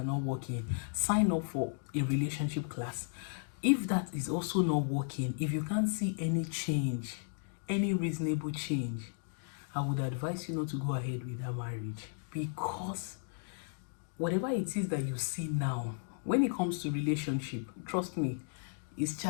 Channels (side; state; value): right; silent; 55 dB below the other